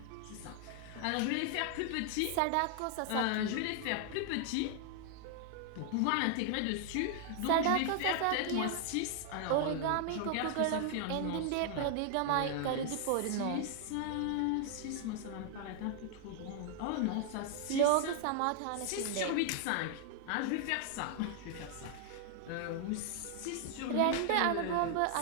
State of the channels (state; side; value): different; both; correlation 0.00